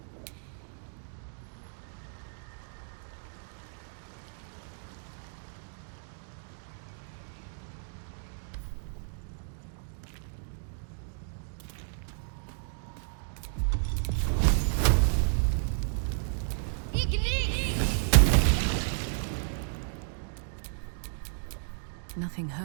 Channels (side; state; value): left; silent; digital silence